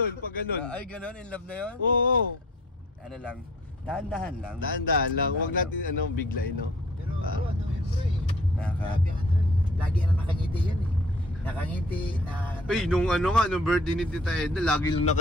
Pag ganun. Ay, ganon? In love na yun? Oo. Ano lang? Dahan-dahan lang. Dahan-dahan lang. Huwag natin biglayin, no? Pero bro, ano yun bro eh. Grabe Lagi na nakangiti yan eh. Nakangiti na... Ay, nung birthday ni Tita Edna, lagi lang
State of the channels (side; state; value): both; normal; correlation 0.53